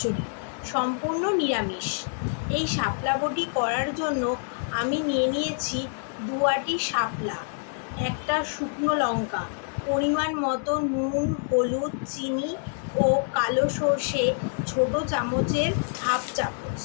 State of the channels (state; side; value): silent; right; digital silence